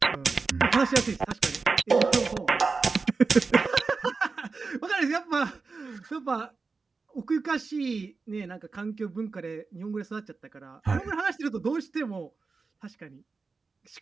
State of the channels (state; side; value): quieter; left; 4.4 dB